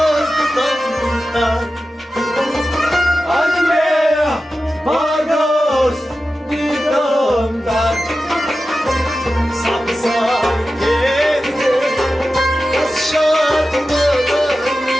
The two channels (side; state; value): both; normal; correlation 0.93